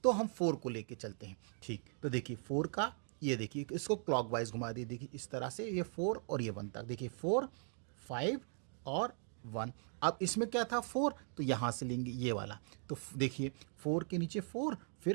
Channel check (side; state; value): left; silent; 52 dB below the other